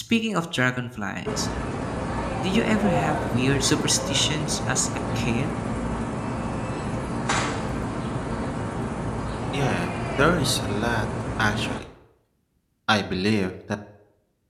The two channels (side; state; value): both; identical; correlation 1.00